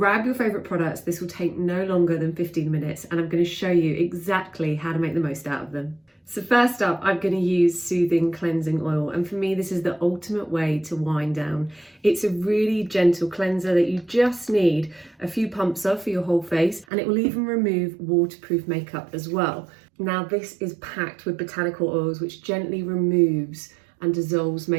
your favourite products, this will take no longer than 15 minutes and I'm going to show you exactly how to make the most out of them. So first up, I'm going to use Soothing Cleansing Oil, and for me this is the ultimate way to wind down. It's a really gentle cleanser that you just need a few pumps of for your whole face, and it will even remove waterproof makeup as well. Now this is packed with botanical oils which gently removes and dissolves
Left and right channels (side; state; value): left; drops out; at 16.9 s